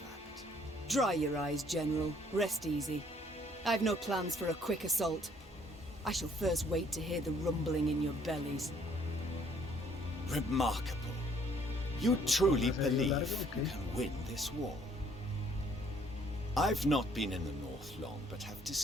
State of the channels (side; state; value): both; normal; correlation 0.63